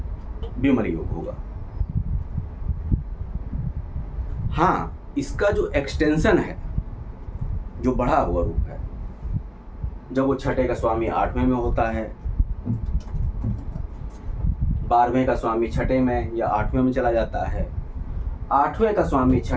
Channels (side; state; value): both; identical; correlation 1.00